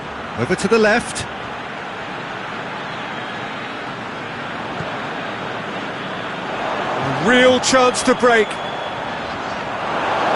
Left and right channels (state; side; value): identical; both; correlation 1.00